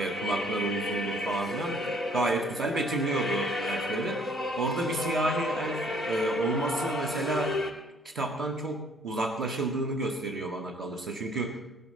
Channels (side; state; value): both; normal; correlation 0.60